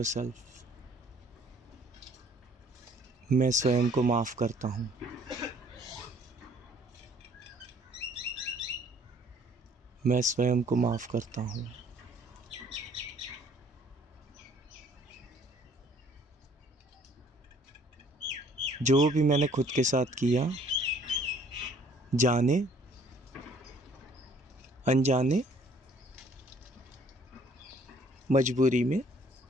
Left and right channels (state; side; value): normal; both; correlation 0.59